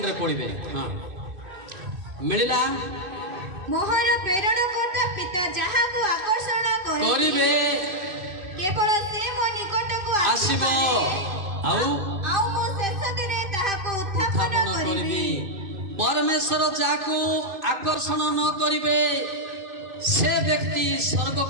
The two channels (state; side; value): late; left; 2.5 ms